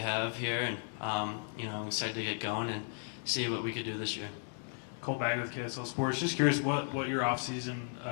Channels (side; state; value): right; silent; 54 dB below the other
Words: here, and I'm excited to get going and see what we could do this year. Cole Bagley with KSL Sports. Just curious what your off-season